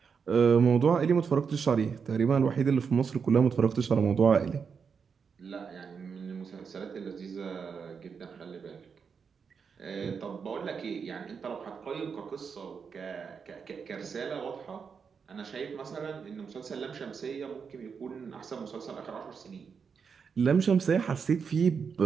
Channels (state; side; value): quieter; left; 6.1 dB